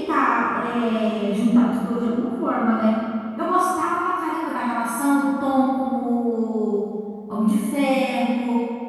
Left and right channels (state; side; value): identical; both; correlation 1.00